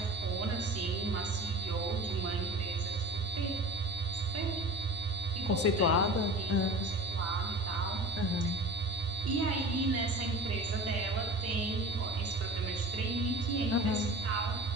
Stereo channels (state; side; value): normal; both; correlation 0.37